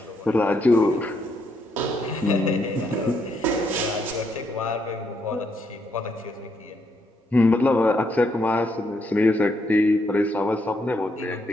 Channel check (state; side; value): normal; both; correlation 0.76